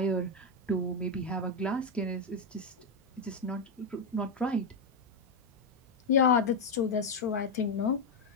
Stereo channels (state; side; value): quieter; right; 3.1 dB